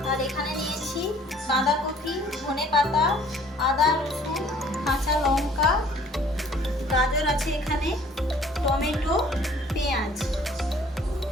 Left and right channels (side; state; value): both; normal; correlation 0.55